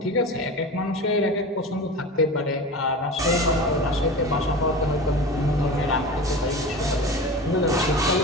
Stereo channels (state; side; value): normal; both; correlation 0.31